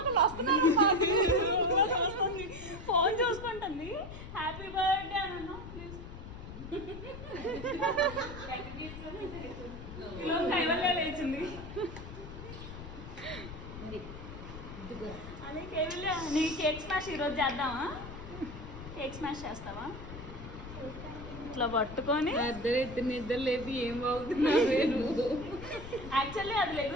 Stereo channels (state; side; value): noise; left; rumble, 11 dB below the sound